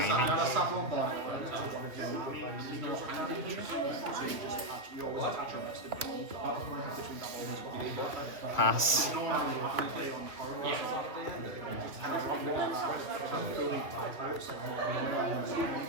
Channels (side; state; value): left; late; 2.6 ms